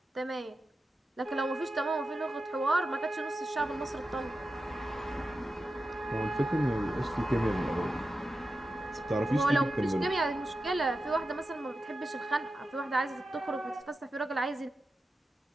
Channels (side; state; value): both; normal; correlation 0.91